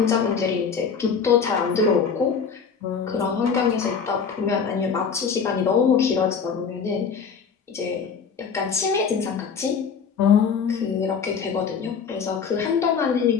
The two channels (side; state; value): right; quieter; 6.2 dB